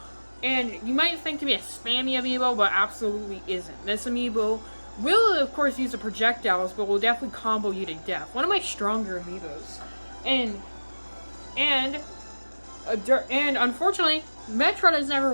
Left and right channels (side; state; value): both; inverted; correlation -1.00